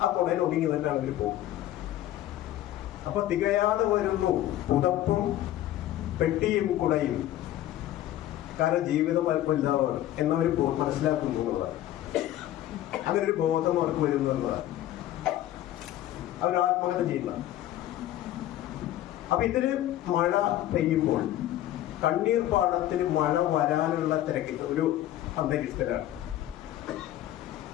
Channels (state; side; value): quieter; right; 13.5 dB